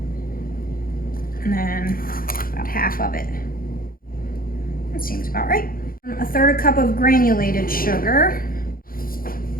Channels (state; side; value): late; right; 0.42 ms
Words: and then about half of it. That seems about right. 1/3 cup of granulated sugar.